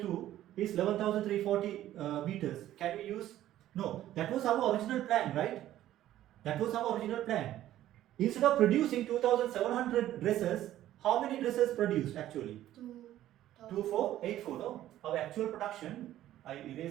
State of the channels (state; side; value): quieter; left; 13.2 dB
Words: is 11,340 meters. Can we use? No, that was our original plan, right? That was our original plan. Instead of producing 2,700 dresses, how many dresses produced actually? 2,484. No, our actual production, I